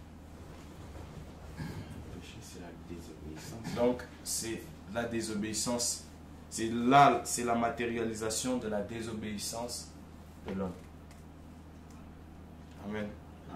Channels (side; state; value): both; identical; correlation 1.00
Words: C'est la désobéissance. Donc c'est la désobéissance, c'est la matérialisation de la désobéissance de l'homme. Amen.